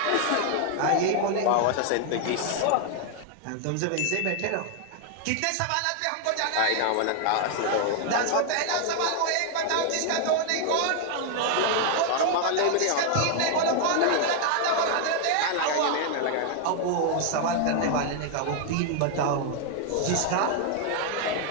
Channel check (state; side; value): different; both; correlation 0.00